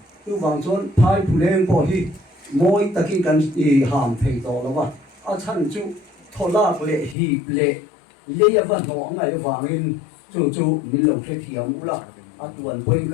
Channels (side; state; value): right; drops out; at 7.2 s